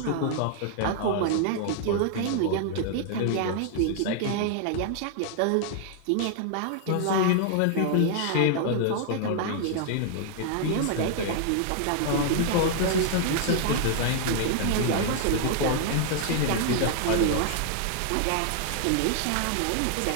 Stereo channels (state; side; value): different; both; correlation 0.00